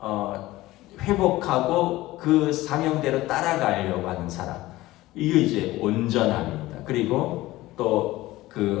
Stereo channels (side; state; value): right; quieter; 17.6 dB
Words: 회복하고 그 사명대로 따라가려고 하는 사람, 이게 이제 온전함입니다. 그리고 또